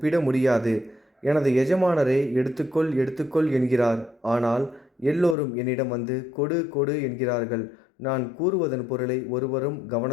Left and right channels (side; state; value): right; drops out; at 5.4 s